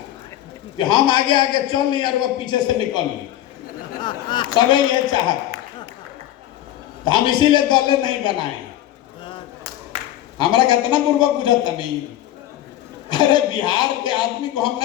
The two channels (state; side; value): quieter; right; 13.1 dB